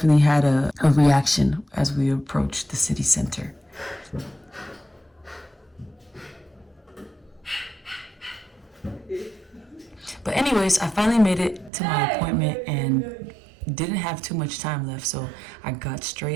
had a reaction as we approached the city center. But anyways, I finally made it to my appointment and didn't have too much time left, so I got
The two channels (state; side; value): drops out; left; at 11.7 s